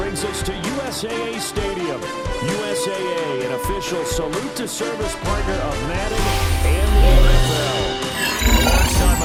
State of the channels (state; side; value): identical; both; correlation 1.00